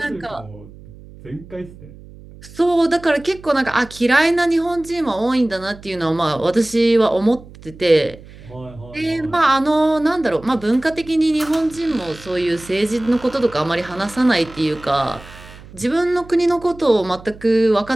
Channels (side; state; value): right; noise; hum, 19 dB below the sound